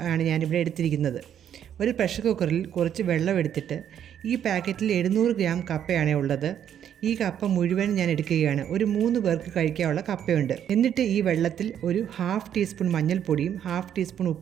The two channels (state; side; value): quieter; left; 9.6 dB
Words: ആണ് ഞാനിവിടെ എടുത്തിരിക്കുന്നത്. ഒരു പ്രഷർ കുക്കറിൽ കുറച്ച് വെള്ളം എടുത്തിട്ട് ഈ പാക്കറ്റിൽ 700 ഗ്രാം കപ്പയാണ് ഉള്ളത്. ഈ കപ്പ മുഴുവൻ ഞാൻ എടുക്കുകയാണ്. ഒരു 3 പേർക്ക് കഴിക്കാനുള്ള കപ്പയുണ്ട്. എന്നിട്ട് ഈ വെള്ളത്തിൽ ഒരു 1/2 ടീസ്പൂൺ മഞ്ഞൾപ്പൊടിയും 1/2 ടീസ്പൂൺ